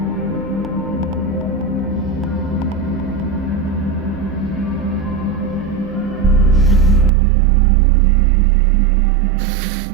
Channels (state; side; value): drops out; left; at 7.1 s